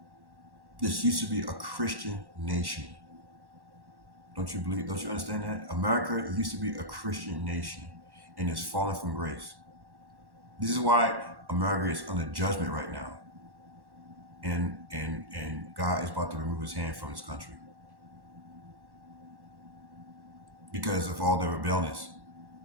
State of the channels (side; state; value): left; late; 1.1 ms